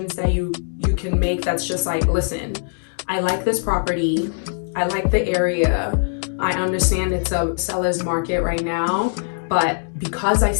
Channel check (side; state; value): right; silent; digital silence